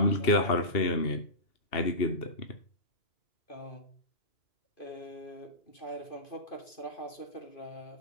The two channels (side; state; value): right; late; 2.8 ms